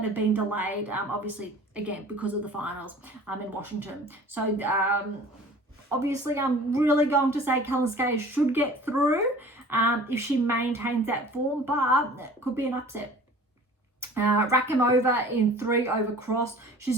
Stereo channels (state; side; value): normal; both; correlation 0.45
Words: have been delayed, obviously, again, because of the finals in Washington. So obviously, I'm really going to say Kalinskaya should get through if she maintains that form, but it could be an upset. Rakimova in 3 over Cross. She's